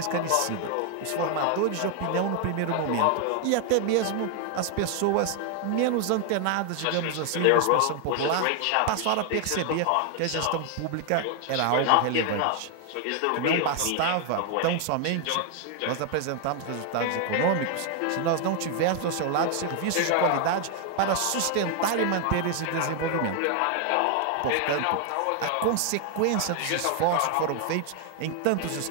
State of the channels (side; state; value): both; different; correlation 0.00